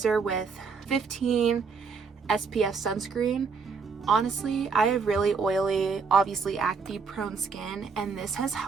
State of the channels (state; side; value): quieter; left; 5.2 dB